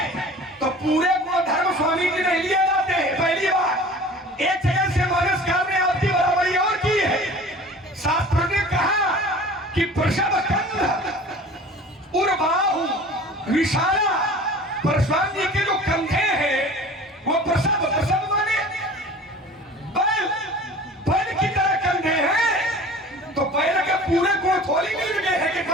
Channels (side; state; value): both; normal; correlation 0.42